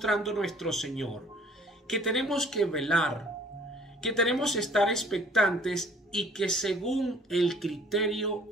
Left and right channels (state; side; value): normal; both; correlation 0.55